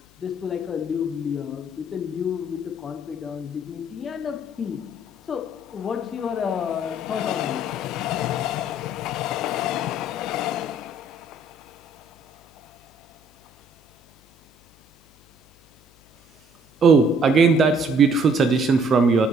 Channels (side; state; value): left; noise; hum, 29 dB below the sound